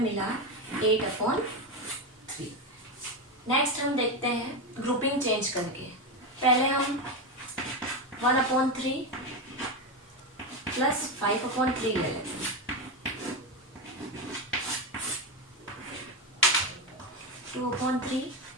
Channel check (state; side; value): normal; both; correlation 0.13